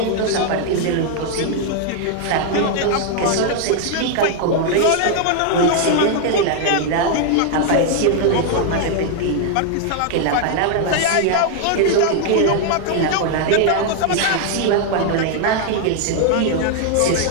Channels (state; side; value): different; both; correlation 0.00